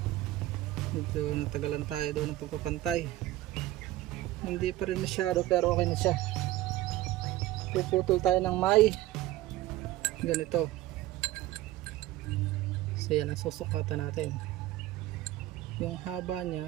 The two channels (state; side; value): quieter; left; 15.7 dB